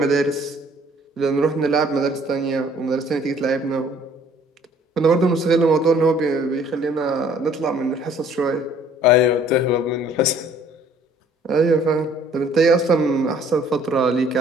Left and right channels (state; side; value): normal; both; correlation 0.57